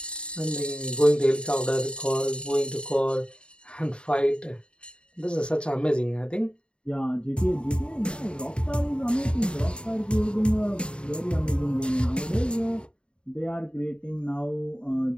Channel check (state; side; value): late; right; 0.054 ms